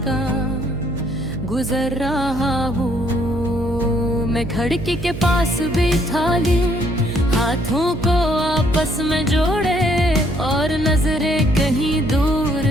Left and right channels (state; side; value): noise; right; hum, 9 dB below the sound